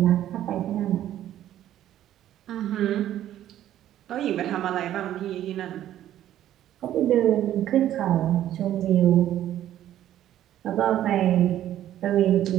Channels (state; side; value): quieter; left; 12.2 dB